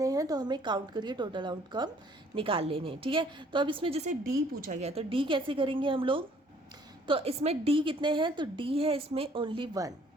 हैं, तो हमें काउंट करके टोटल आउटकम निकाल लेने हैं। ठीक है, तो अब इसमें जैसे डी पूछा गया तो डी कैसे करेंगे हम लोग। तो इसमें डी कितने हैं, तो डी है इसमें ओनली 1।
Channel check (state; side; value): normal; both; correlation 0.59